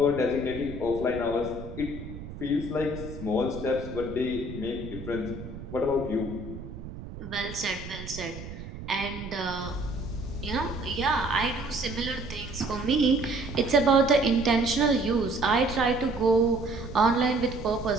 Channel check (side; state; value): right; noise; rumble, 11 dB below the sound